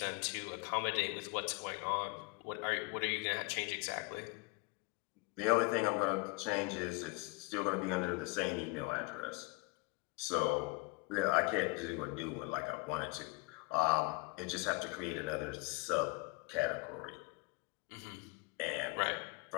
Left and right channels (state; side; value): quieter; right; 25.8 dB